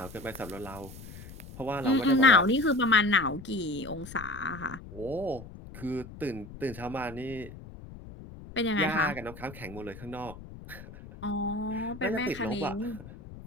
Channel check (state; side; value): noise; left; rumble, 15 dB below the sound